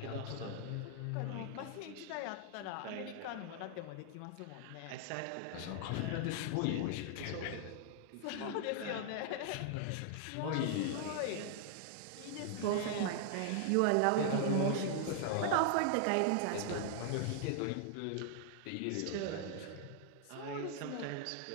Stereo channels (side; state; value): both; different; correlation 0.00